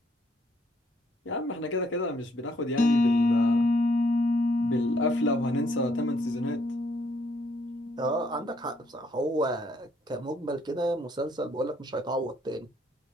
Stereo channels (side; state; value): both; normal; correlation 0.68